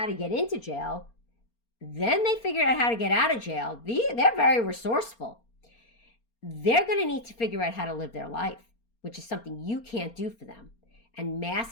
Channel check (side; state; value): right; late; 4.3 ms